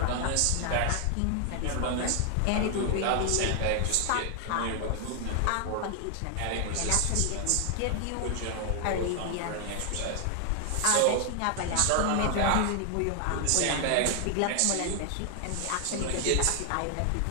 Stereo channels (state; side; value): different; both; correlation 0.00